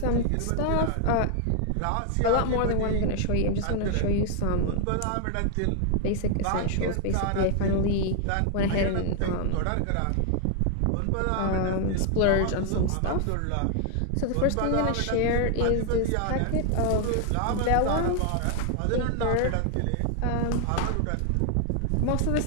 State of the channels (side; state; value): both; different; correlation 0.00